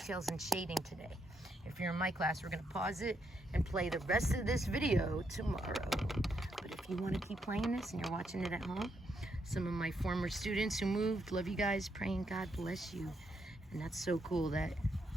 and shading today. If you're in my class, we're gonna pause it and play the rest of this video tomorrow. But if you wanna keep playing this and you're watching it at home, some of my former students who moved, love you guys, praying God bless you. And that's so cool that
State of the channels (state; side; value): normal; both; correlation 0.78